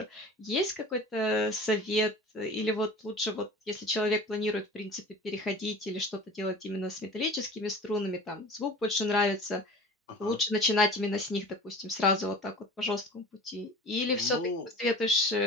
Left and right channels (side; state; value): both; normal; correlation 0.40